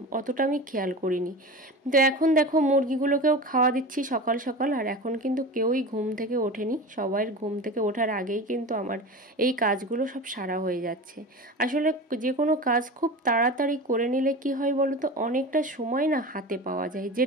অতটা আমি খেয়াল করিনি। তো এখন দেখো মুরগিগুলোকেও খাওয়া দিচ্ছি সকাল সকাল। আর এখন কিন্তু কেউই ঘুম থেকে ওঠেনি, সবাই ঘুম থেকে ওঠার আগেই কিন্তু আমার এই কাজগুলো সব সারা হয়ে যাচ্ছে। আসলে যে কোনো কাজ খুব তাড়াতাড়ি করে নিলে কি হয় বলো তো, অনেকটা সময় না হাতে পাওয়া যায়,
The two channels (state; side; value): normal; both; correlation 0.30